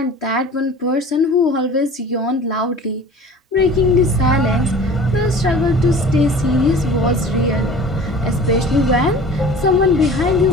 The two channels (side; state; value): both; normal; correlation 0.43